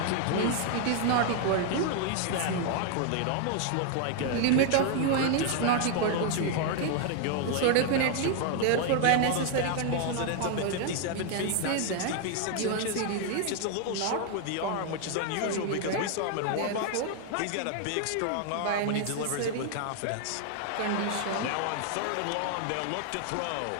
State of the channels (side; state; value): both; different; correlation 0.00